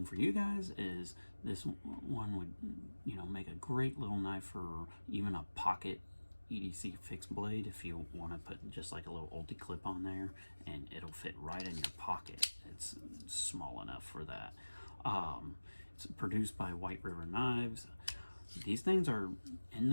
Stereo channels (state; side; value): inverted; both; correlation -1.00